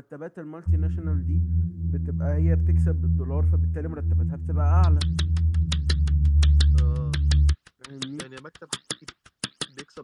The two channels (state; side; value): identical; both; correlation 1.00